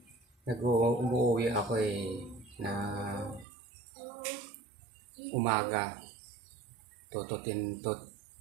Umuwi ako na umaga. 10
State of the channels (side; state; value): left; drops out; at 3.5 s